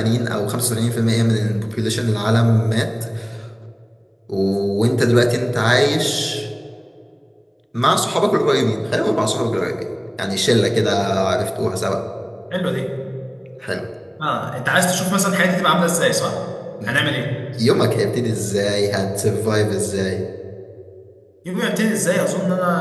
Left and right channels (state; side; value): identical; both; correlation 1.00